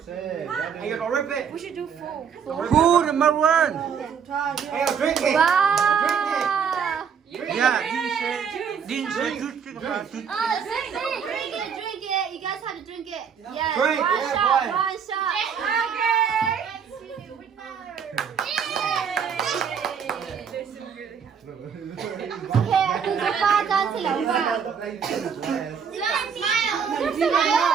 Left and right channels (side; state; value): left; quieter; 7.0 dB